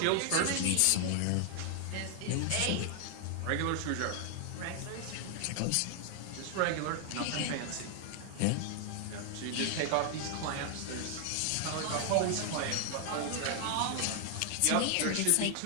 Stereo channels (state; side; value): different; both; correlation 0.00